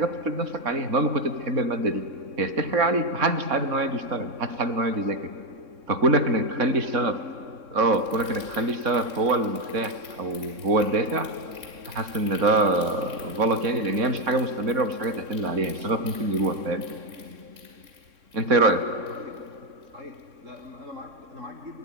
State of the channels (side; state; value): left; late; 3.6 ms